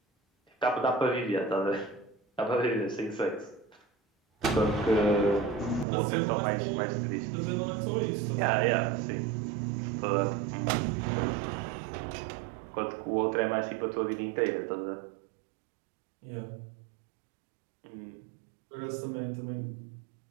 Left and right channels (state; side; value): drops out; left; at 5.9 s